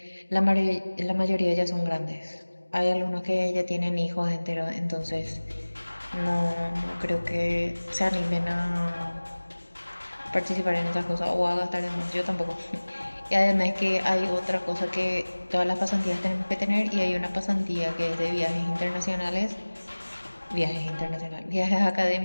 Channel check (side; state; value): both; inverted; correlation -1.00